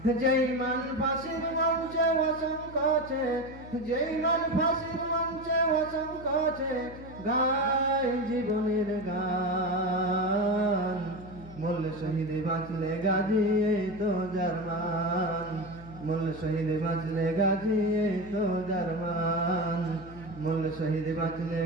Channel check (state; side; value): noise; left; hum, 17 dB below the sound